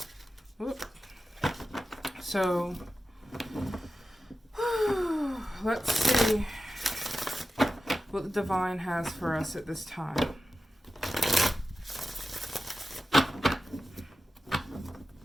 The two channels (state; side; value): normal; both; correlation 0.93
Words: Whoop. So let's see what the divine has for us at this time.